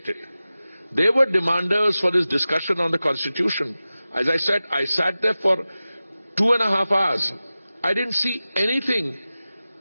it. They were demanders for this discussion on the Constitution. As I said, I sat there for 2.5 hours. I didn't see anything.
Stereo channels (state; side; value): inverted; both; correlation -0.96